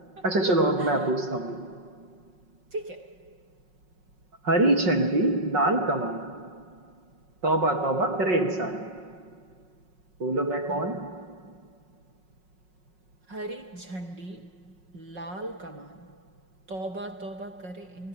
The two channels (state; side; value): late; left; 5.5 ms